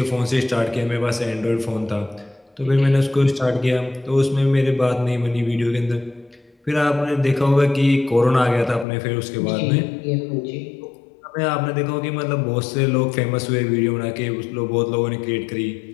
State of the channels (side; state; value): right; drops out; at 8.8 s